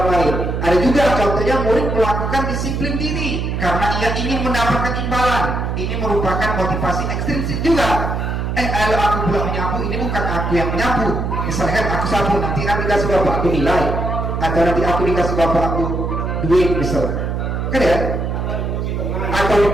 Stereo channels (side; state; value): right; noise; hum, 2 dB below the sound